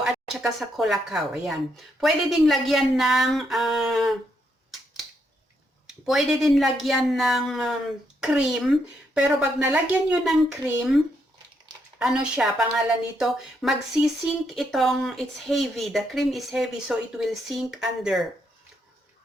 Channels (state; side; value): normal; both; correlation 0.77